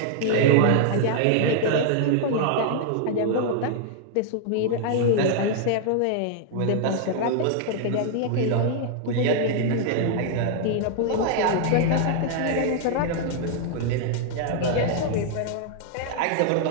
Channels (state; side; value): different; both; correlation 0.00